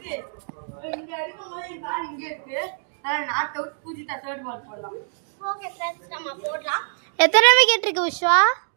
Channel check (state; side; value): silent; left; digital silence